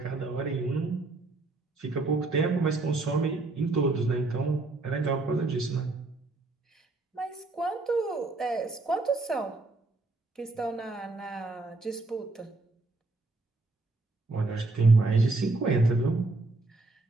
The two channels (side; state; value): left; quieter; 3.2 dB